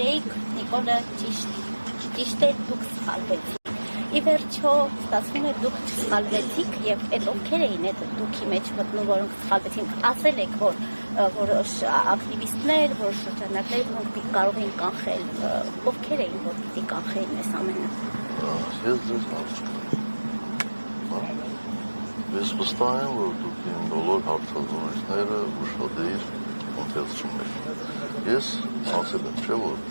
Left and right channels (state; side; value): inverted; both; correlation -1.00